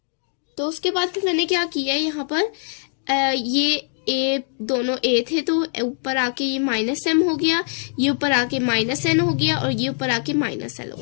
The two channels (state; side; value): silent; right; 60 dB below the other